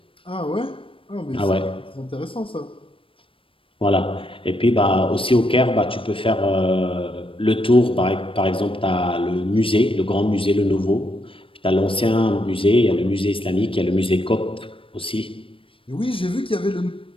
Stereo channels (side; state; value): right; late; 0.26 ms